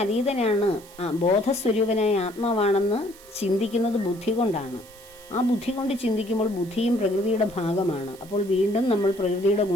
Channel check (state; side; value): noise; right; hiss, 22 dB below the sound